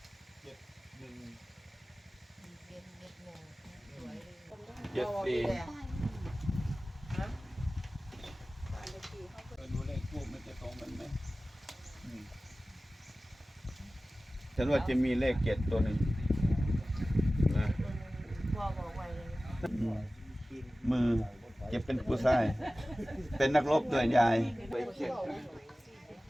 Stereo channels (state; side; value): normal; both; correlation 0.96